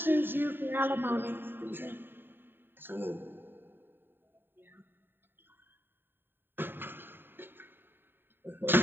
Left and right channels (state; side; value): late; left; 0.098 ms